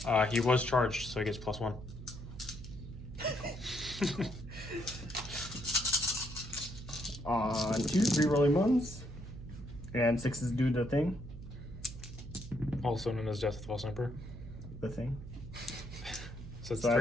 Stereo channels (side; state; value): right; noise; hum, 12 dB below the sound